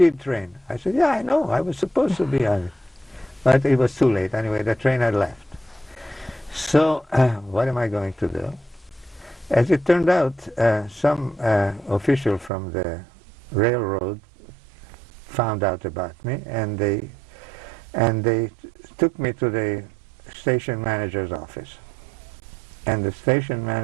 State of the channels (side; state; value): left; drops out; at 12.5 s